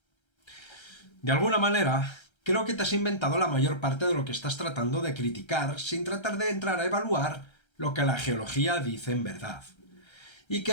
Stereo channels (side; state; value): right; late; 1.3 ms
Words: De alguna manera, creo que te has inventado la mayor parte de lo que estás tratando de criticar sin tratar de entrar a evaluar lo que la geología dice en verdad. Y que